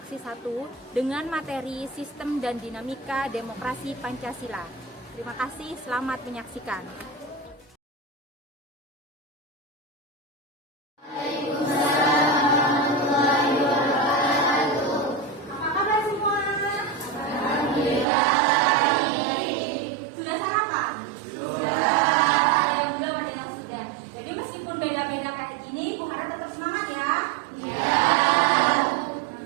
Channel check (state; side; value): drops out; left; at 18.1 s